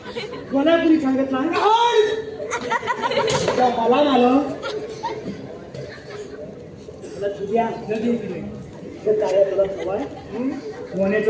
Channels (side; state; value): both; identical; correlation 1.00